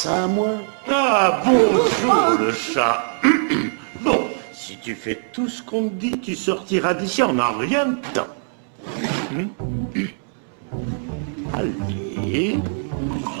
à moi? Ah bon, le chat. Bon, si tu fais tout ce qu'on te dit, tu sortiras d'ici en un rien de temps. Allez,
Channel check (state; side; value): silent; left; 64 dB below the other